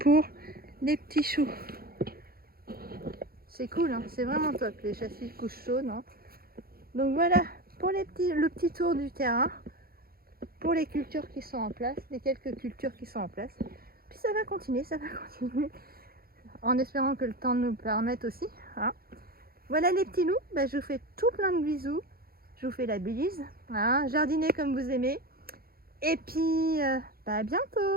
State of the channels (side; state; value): left; late; 0.44 ms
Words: les petits choux. C'est cool, hein, c'est vraiment top les châssis couche chaude. Hein. Donc voilà pour le petit tour du terrain, pour les cultures qui sont en place, les quelques cultures qui sont en place. Puis ça va continuer, en espérant que le temps nous permette aussi. Hein. Voilà les petits loups, je vous fais tout plein de bisous. Je vous fais la bise. Hein. Jardinez comme vous aimez. Et puis à